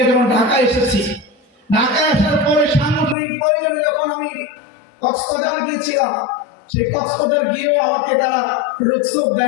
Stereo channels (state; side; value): drops out; right; at 3.2 s